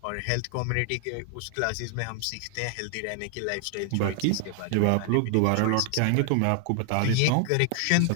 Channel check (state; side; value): different; both; correlation 0.00